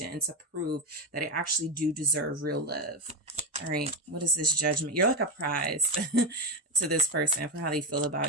and to prove that I actually do deserve real love. All right. What is this Judgment? You're like a prize to this person for how they feel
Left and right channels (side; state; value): both; normal; correlation 0.11